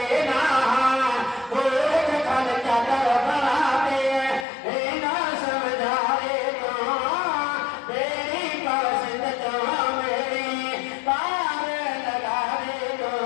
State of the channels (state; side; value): drops out; right; at 4.5 s